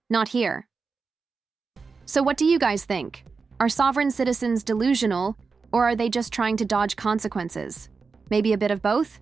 Not here. So what do you guys think? Are sovereign citizens delusional, or are they just trying to dodge consequences? Maybe a bit of both?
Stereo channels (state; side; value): quieter; left; 4.7 dB